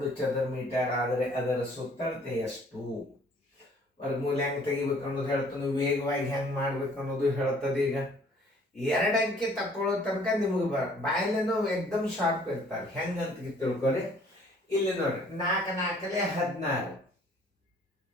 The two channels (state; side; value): normal; both; correlation 0.57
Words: ಚದರ ಮೀಟರ್ ಆದರೆ ಅದರ ಸುತ್ತಳತೆ ಎಷ್ಟು, ವರ್ಗಮೂಲ ಹೆಂಗೆ ತೆಗಿಬೇಕು ಅನ್ನೋದು ಹೇಳ್ತಾನೆ, ವೇಗವಾಗಿ ಹೆಂಗೆ ಮಾಡ್ಬೇಕು ಅನ್ನೋದು ಹೇಳ್ತದೆ. ಈಗ 2 ಅಂಕೆ ತಕ್ಕೊಳ್ಳೋ ತನಕ ನಿಮಗೆ ಬಾಯಲ್ಲೇನೋ ಎಕ್ದಮ್ ಶಾರ್ಪ್ ಇರ್ತಾರೆ. ಹೆಂಗೆ ಅಂತ ತಿಳ್ಕೊರಿ. ಇಲ್ಲಿ ನೋಡ್ರಿ, 4 4 16,